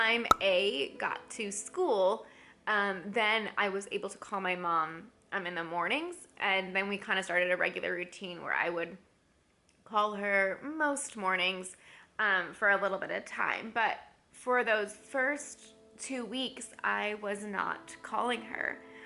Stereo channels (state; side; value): identical; both; correlation 1.00